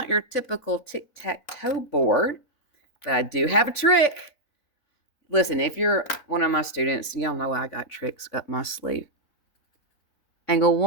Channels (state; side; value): late; right; 4.0 ms